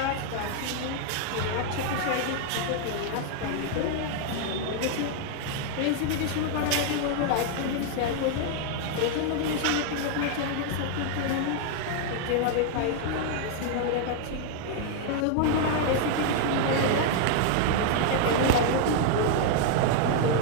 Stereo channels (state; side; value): different; both; correlation 0.00